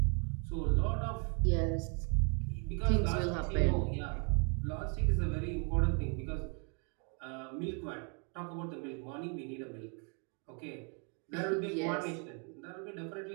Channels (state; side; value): quieter; left; 37.8 dB